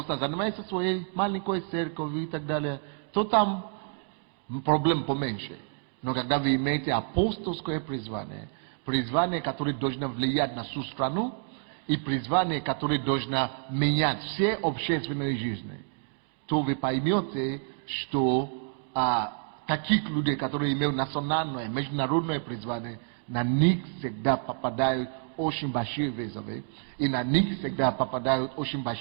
занимается своей маленькой церковью и так далее, то там проблем поменьше. Но когда вы имеете апостольское призвание, которое должно влиять на всю страну, и призвание, которое должно менять все общественные жизни, то вы поймете, что таких людей, которые имеют национальное, международное призвание, на них всегда попадают очень большие вызовы, и на них всегда попадают очень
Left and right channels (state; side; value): silent; left; 59 dB below the other